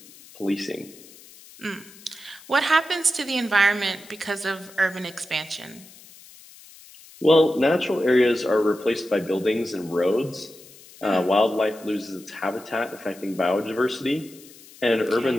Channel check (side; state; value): left; noise; hiss, 21 dB below the sound